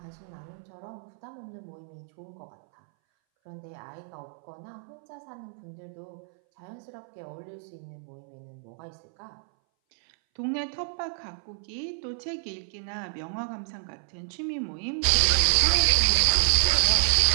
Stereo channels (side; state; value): left; silent; 59 dB below the other